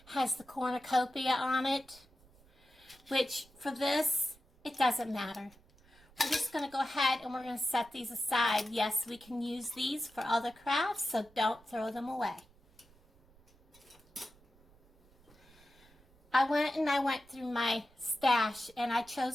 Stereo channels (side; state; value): right; noise; rumble, 28 dB below the sound